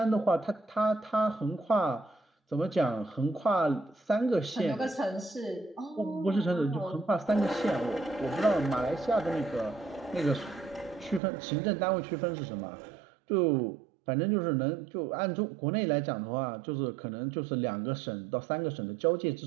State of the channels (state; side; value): drops out; left; at 11.2 s